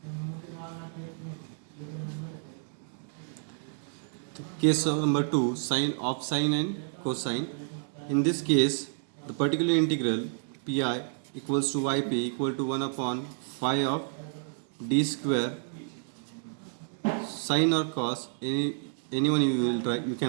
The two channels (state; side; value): silent; left; digital silence